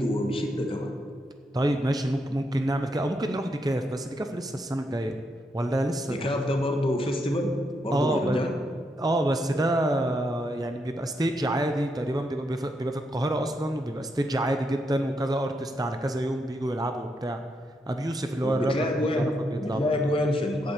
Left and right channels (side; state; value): both; normal; correlation 0.80